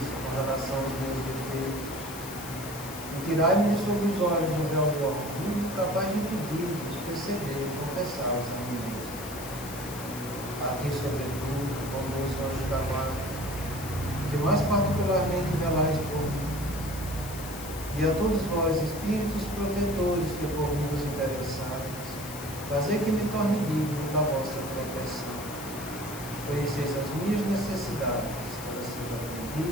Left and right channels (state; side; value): noise; left; hiss, 12 dB below the sound